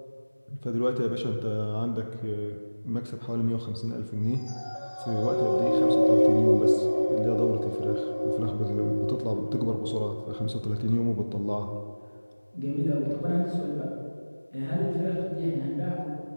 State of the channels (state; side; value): inverted; both; correlation -1.00